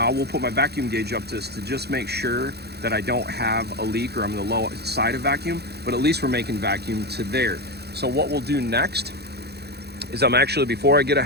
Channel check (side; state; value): left; late; 0.48 ms